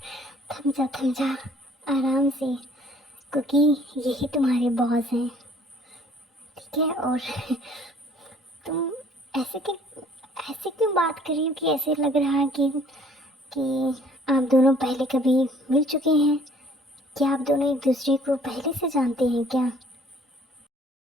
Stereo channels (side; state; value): both; normal; correlation 0.57